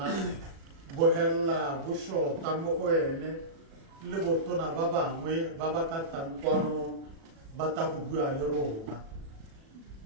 bo helela bo shota mo go ene le botona ba bangwe ba ba ka tang kwano ba ta go bua le rona.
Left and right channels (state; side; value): late; left; 36 ms